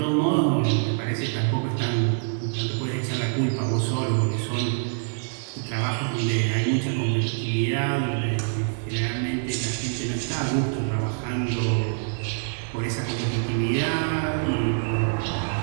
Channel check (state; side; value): silent; left; 61 dB below the other